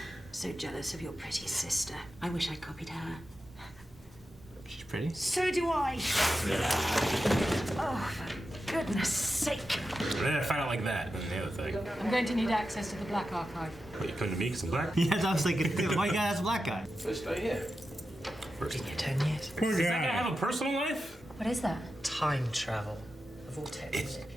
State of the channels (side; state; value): both; normal; correlation 0.90